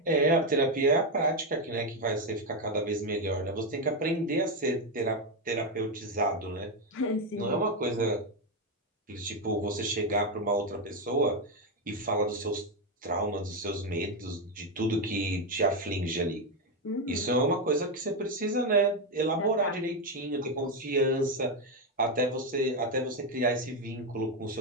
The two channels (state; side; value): normal; both; correlation 0.07